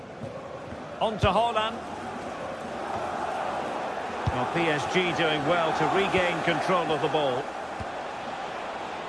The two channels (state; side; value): identical; both; correlation 1.00